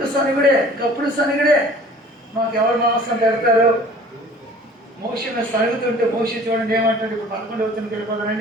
సనిగుడే. మాకు ఎవరు మాంసం పెడతారు? మోషను సరుగుతుంటే మోషి చూడండి ఏమంటాడు. ఇప్పుడు 11వ వచనంకి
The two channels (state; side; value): normal; both; correlation 0.48